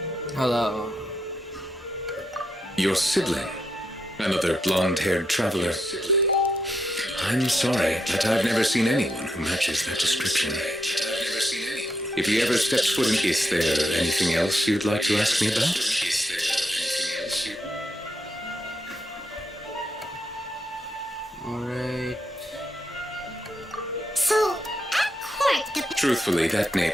Hello. Your sibling, another blonde-haired traveler. I'm sorry, but I've never seen anyone who matches that description. If he ever steps foot in, is there anything else you'd like to ask me about? Alright. So, at court, the. Truthfully, that name,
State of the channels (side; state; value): both; normal; correlation 0.81